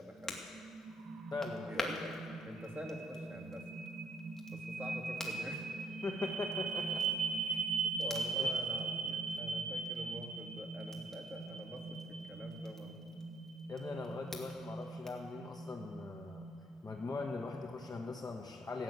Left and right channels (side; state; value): both; normal; correlation 0.68